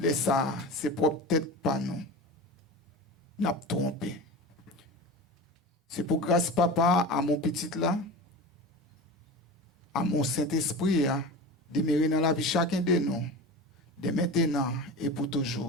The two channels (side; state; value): both; normal; correlation 0.30